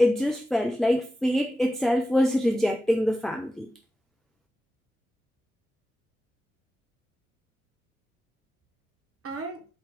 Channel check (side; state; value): both; normal; correlation 0.93